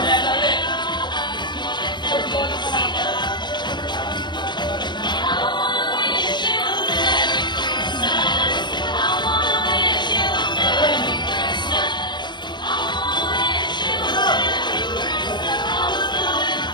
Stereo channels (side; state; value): right; late; 0.22 ms